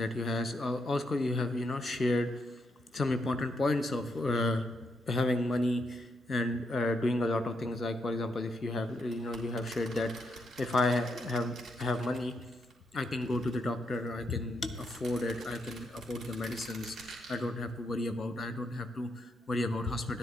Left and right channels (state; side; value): normal; both; correlation 0.79